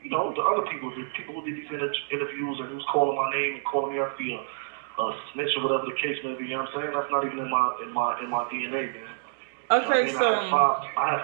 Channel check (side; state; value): left; silent; digital silence